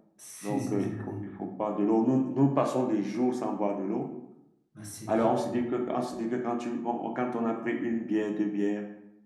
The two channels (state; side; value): identical; both; correlation 1.00